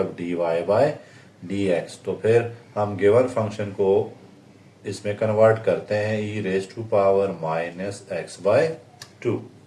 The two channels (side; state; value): both; identical; correlation 1.00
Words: d Y by D x. तो फिर हम गिवन फंक्शन को इसमें कन्वर्ट करते हैं e raise to power minus x by 2।